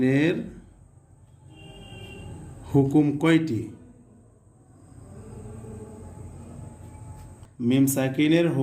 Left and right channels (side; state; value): both; identical; correlation 1.00